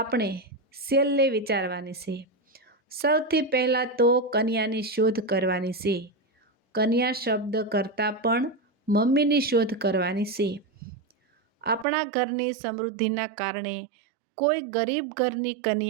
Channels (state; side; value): drops out; left; at 11.9 s